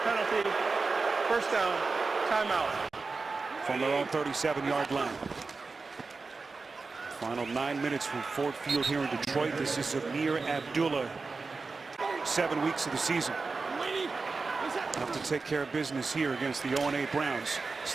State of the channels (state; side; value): quieter; left; 4.2 dB